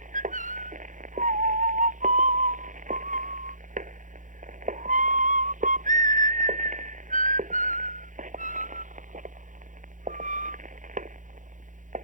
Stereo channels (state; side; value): late; left; 0.37 ms